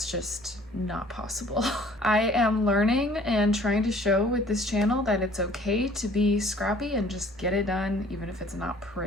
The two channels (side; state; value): both; normal; correlation 0.54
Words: just not possible. I am learning and trying to show with this channel that it's okay to be scrappy and just get it done, even if it's not